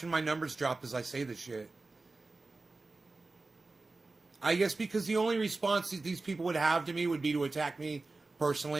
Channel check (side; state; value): left; quieter; 3.5 dB